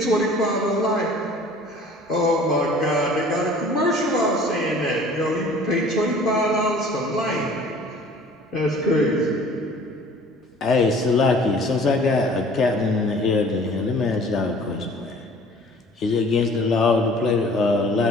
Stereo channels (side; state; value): both; normal; correlation 0.49